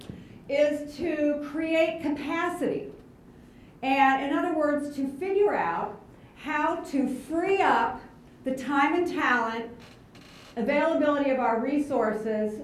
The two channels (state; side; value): identical; both; correlation 1.00